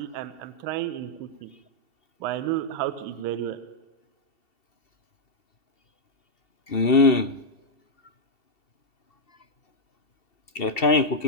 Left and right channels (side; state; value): right; late; 2.7 ms